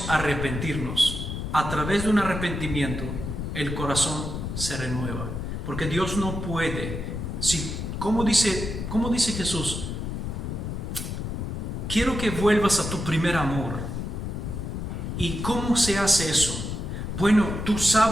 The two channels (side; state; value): left; noise; rumble, 4 dB below the sound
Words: arrepentirnos. A través de un arrepentimiento, el corazón se renueva. Porque Dios no puede. ¿Cómo dice Jesús? Quiero que vuelvas a tu primer amor. ¿Y cómo se hace eso? Bueno, tú